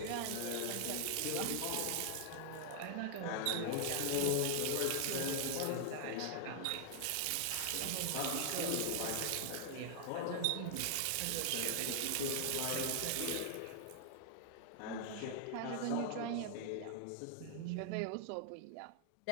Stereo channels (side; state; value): both; different; correlation 0.00